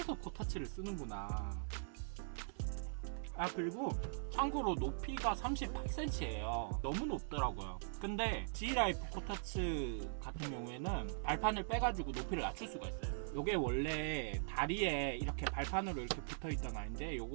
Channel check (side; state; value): left; silent; 50 dB below the other